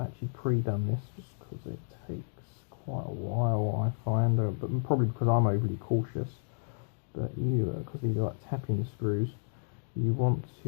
pre-done this just because it takes quite a while, I find, but probably because I'm overly cautious. But you, because these are like tapping screws, you want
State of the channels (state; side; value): silent; right; digital silence